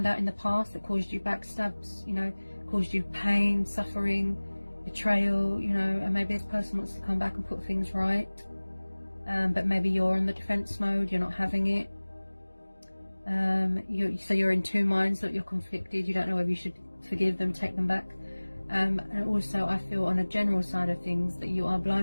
out in the past that caused you backstabs, you know, caused you pain, suffering, betrayal, you know, and maybe this person wants to come back and put things right. But maybe you're in the defense mode, you're not having it. So you're in two minds, that you're conflicted, you don't know whether you should forgive them, take them back. And also I feel on a general side of things that you are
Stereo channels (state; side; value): inverted; both; correlation -1.00